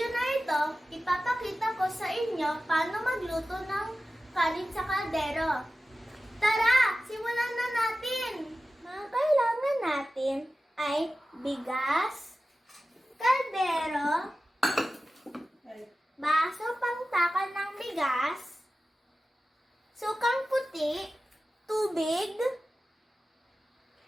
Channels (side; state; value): both; normal; correlation 0.94